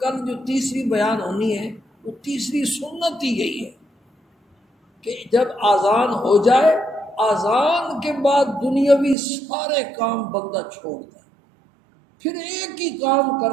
کل جو تیسری بیان ہونی ہے وہ تیسری سنت ہی یہی ہے کہ جب آذان ہو جائے، آذان کے بعد دنیاوی سارے کام بندہ چھوڑ دے، پھر ایک ہی کام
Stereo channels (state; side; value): drops out; left; at 9.2 s